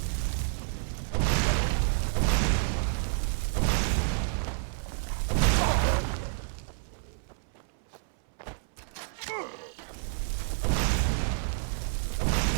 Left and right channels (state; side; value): silent; left; 58 dB below the other